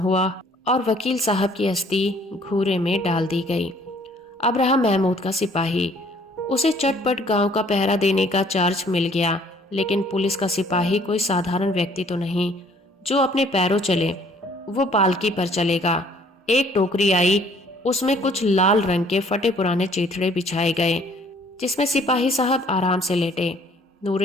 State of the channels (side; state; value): both; normal; correlation 0.59